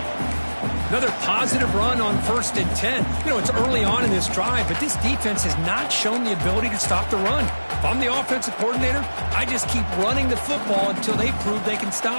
Another positive run on 1st and 10. You know, it's early on in this drive, but this defense has not shown the ability to stop the run. If I'm the offensive coordinator, I just keep running the football until they prove they can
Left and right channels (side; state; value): both; inverted; correlation -1.00